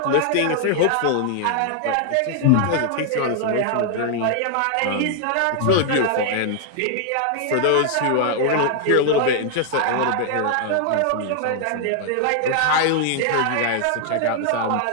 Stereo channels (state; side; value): different; both; correlation 0.00